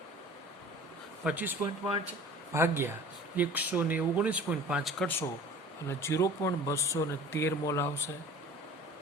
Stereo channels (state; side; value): normal; both; correlation 0.43